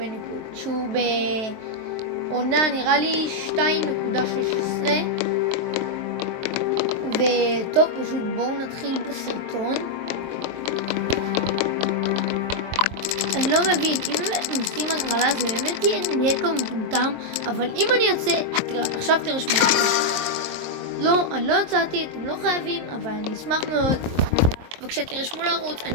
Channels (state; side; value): late; left; 23 ms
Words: שהוא בעונה נראה לי 2.16. וטוב, פשוט בואו נתחיל בסרטון. אני לא מבין, אם נשים הגרלה זה באמת יהיה נטו מטומטם, אבל אם אני יוצא, עכשיו תרשמו. לא, אני לא יצאתי, אתם לא חייבים, אבל אני אשמח מאוד. וכשתרשמו לערוץ,